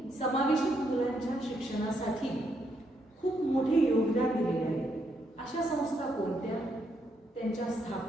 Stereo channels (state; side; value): normal; both; correlation 0.77